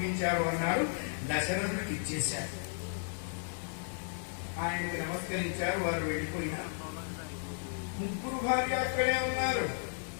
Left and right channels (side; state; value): right; silent; 55 dB below the other